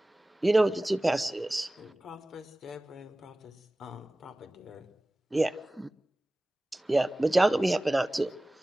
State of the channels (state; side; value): normal; both; correlation 0.98